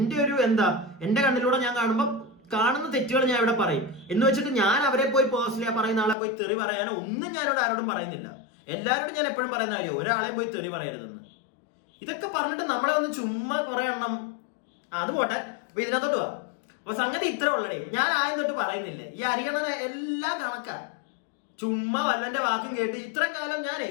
ഒരു എന്റെ കണ്ണിലൂടെ ഞാൻ കാണുമ്പോൾ കാണുന്ന തെറ്റുകൾ ഞാൻ ഇവിടെ പറയും എന്ന് വെച്ചിട്ട് ഞാൻ അവരെ പോയി പേഴ്സണലി പറയുന്ന ആളെ പോയി തെറി പറയാനോ ഒന്നും ഞാനിവിടെ ആരോടും പറയുന്നില്ല. എല്ലാവരോടും ഞാൻ എപ്പോഴും പറയുന്ന കാര്യം ഒരാളെയും പോയി തെറി പറയരുതെന്ന്. ഇതൊക്കെ പറഞ്ഞിട്ട് നമ്മളെ ഒന്ന് ചുമ്മാ കുറെ എണ്ണം അത് പോട്ടെ. അപ്പൊ ഇതിനകത്തോട്ട് പോവാ. അപ്പൊ സംഗതി ഇത്ര ഉള്ളടേ. ഞാൻ ആദ്യം തൊട്ട് പറയുന്നില്ലേ, ഈ അരിയണനെ എല്ലാം കണക്കാ. ചുമ്മാ വല്ലന്റെ വാക്കും കേട്ട് ഇത്രയും കാലം ഞാനേ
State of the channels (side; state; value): right; drops out; at 6.2 s